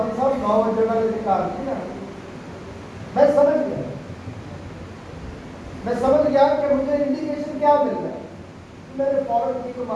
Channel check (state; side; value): identical; both; correlation 1.00